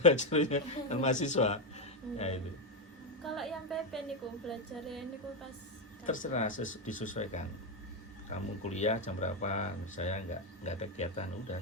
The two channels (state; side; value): normal; both; correlation 0.07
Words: belajarnya kan mahasiswa. Ya itu. Kalau yang PP niku belajarnya niku pas terserah, disesuaikan. Kamu kuliah jam berapa? Saya nggak ada kegiatan, udah